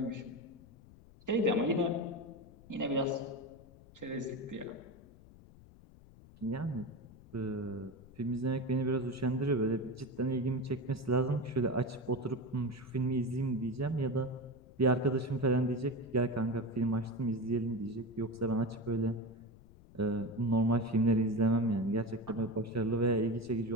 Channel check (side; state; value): left; noise; rumble, 22 dB below the sound